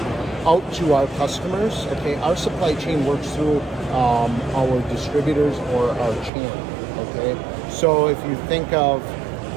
out to our customers, okay, our supply chain works through our distributors or our channel, okay? So if you think of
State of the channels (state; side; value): drops out; left; at 6.3 s